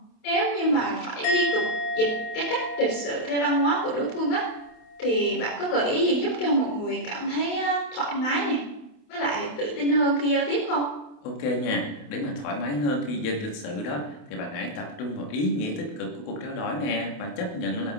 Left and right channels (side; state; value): right; late; 28 ms